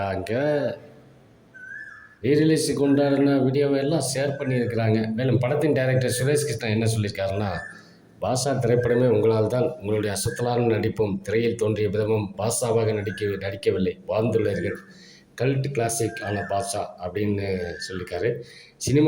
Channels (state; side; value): identical; both; correlation 1.00